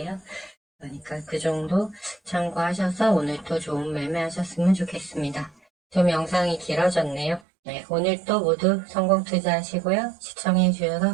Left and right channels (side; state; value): left; drops out; at 7.4 s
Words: 그러니까 그 정도 참고하셔서 오늘 또 좋은 매매하셨으면 좋겠습니다. 좀 영상이 길어졌네요. 네, 오늘 또 모두 성공 투자하시고요. 시청해 주셔서